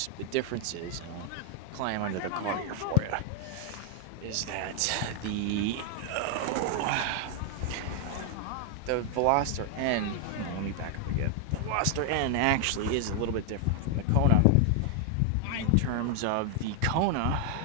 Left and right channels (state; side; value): different; both; correlation 0.00